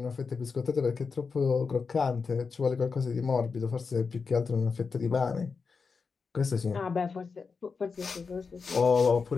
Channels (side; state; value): right; quieter; 5.1 dB